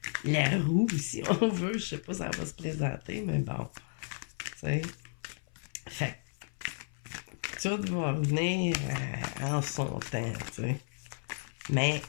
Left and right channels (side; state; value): right; silent; 56 dB below the other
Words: la roue, si on veut. Je sais pas si ça va se présenter, mais bon. Tu sais. Fait que tout va venir en son temps, tu sais. Mais